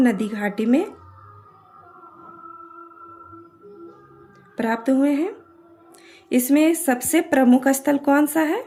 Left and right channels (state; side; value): identical; both; correlation 1.00